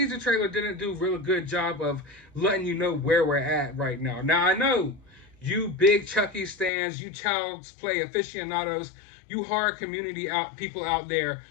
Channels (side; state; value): right; drops out; at 6.7 s